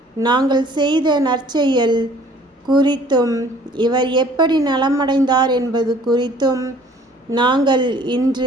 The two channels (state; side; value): normal; both; correlation 0.54